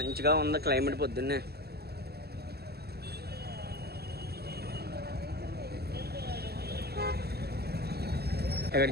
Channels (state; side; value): late; left; 0.46 ms